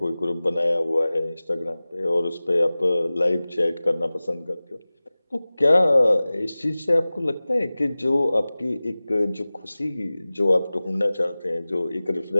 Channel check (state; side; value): inverted; both; correlation -0.98